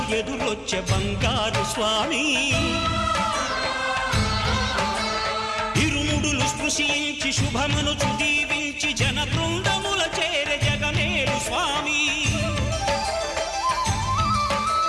ఎదురొచ్చే బంగారు స్వామి ఇరుముడులు స్పృశించి శుభమనుచు దీవించి జన బృందముల చేరే జగమేలు స్వామి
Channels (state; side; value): identical; both; correlation 1.00